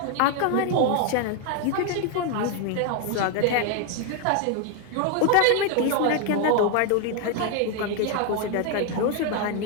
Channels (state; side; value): different; both; correlation 0.01